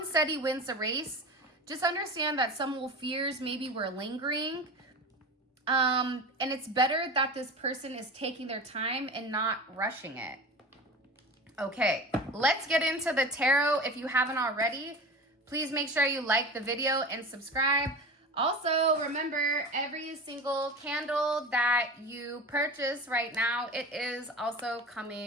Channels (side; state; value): both; normal; correlation 0.32